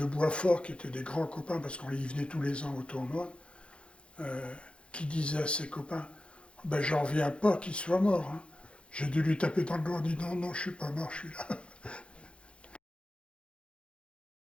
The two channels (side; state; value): right; late; 0.058 ms